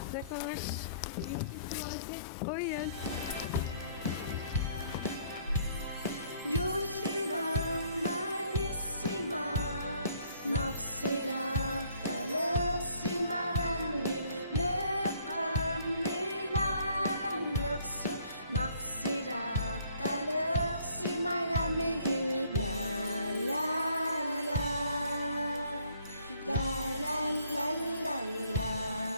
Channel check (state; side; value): inverted; both; correlation -0.63